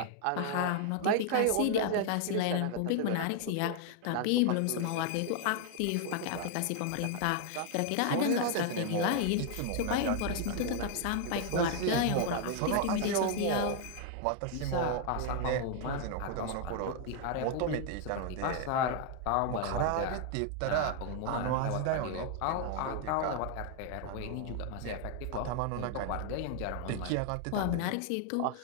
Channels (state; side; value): different; both; correlation 0.00